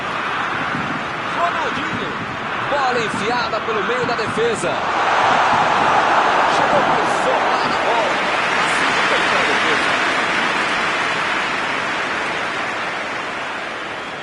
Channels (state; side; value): identical; both; correlation 1.00